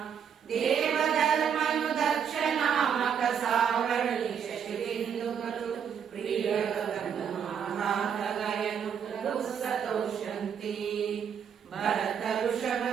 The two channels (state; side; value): quieter; left; 7.7 dB